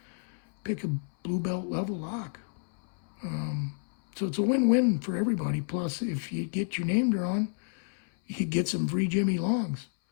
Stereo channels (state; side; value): silent; right; 58 dB below the other